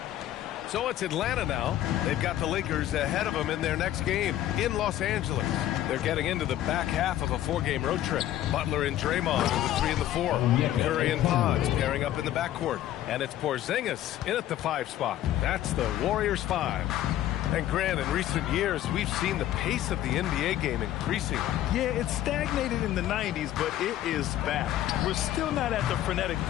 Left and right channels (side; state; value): right; quieter; 12.9 dB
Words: So it's Atlanta now. They've got the Lakers ahead of them in their next game in Los Angeles. They're getting into the back half of a four-game road trip. Butler and Draymond in the 3 and the 4. Curry and Pods pairing up in the backcourt. And it's Porzingis in at the 5 spot. That's the Warriors 5. And Grant, in recent years, we've seen the pace of the NBA game increasing. Yeah, it stagnated in the 90s, but it is back. We're still not at the frenetic